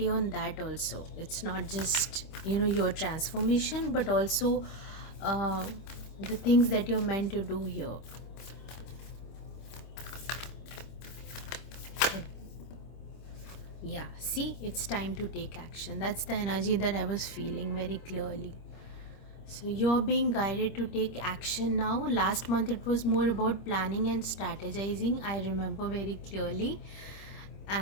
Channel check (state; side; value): late; right; 25 ms